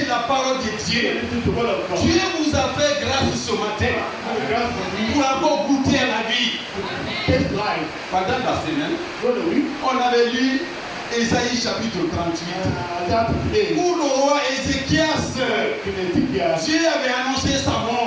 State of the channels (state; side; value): identical; both; correlation 1.00